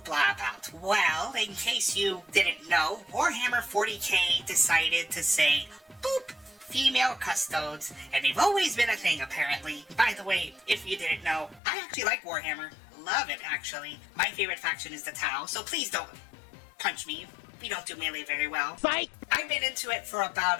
about? Well, in case you didn't know, Warhammer 40k decided to say, boop, female custodes, and they've always been a thing apparently. By the way, if you didn't know, I actually like Warhammer. Love it, actually. My favorite faction is the Tau, so please don't punch me. We don't do melee very well. Fight! I've been into it for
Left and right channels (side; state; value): right; drops out; at 11.6 s